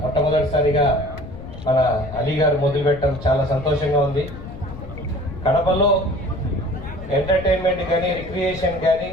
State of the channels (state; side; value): noise; left; rumble, 13 dB below the sound